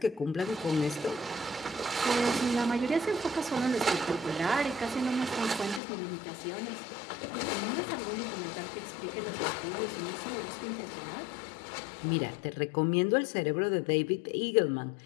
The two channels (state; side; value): drops out; right; at 5.8 s